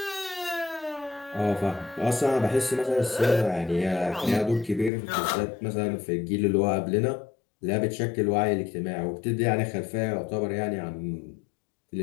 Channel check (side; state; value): right; drops out; at 4.9 s